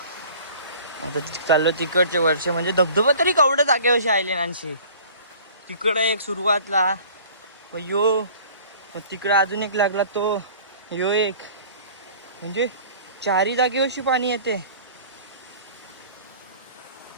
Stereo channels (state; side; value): inverted; both; correlation -0.48